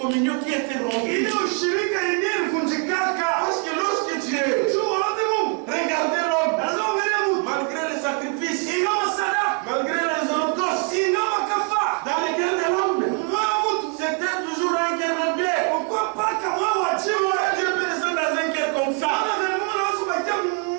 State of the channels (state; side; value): quieter; left; 35.4 dB